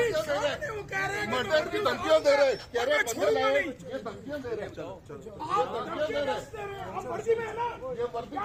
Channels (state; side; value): identical; both; correlation 1.00